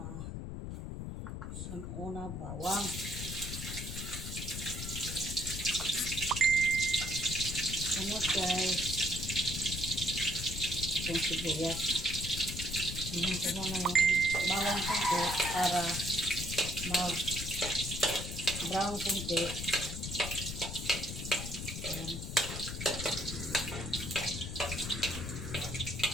una bawang. Sunod guys, itong sibuyas. Ayan ko na yung bawang konti para mag-brown konti. Ayan.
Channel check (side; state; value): left; noise; rumble, 6 dB below the sound